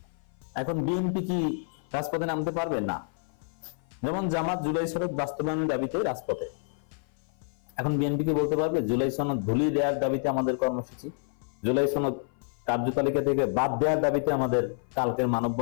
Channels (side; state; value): right; silent; 55 dB below the other